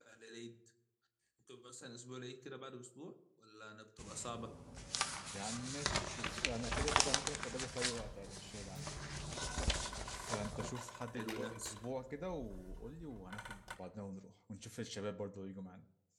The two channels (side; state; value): both; identical; correlation 1.00